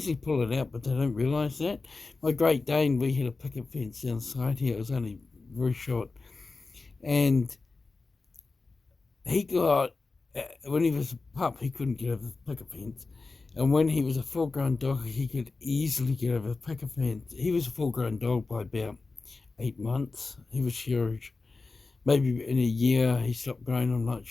pull it out, but they don't realise that. My Great Dane, we had a picket fence down the side here. It was only very short. And he got, when he was a pup, he couldn't get over the picket fence. And when he was a full-grown dog, he could easily get over the picket fence. He was a full-grown dog by about 8 months. He was huge. Maybe in a year he stopped growing, I'm not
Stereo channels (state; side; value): quieter; right; 3.8 dB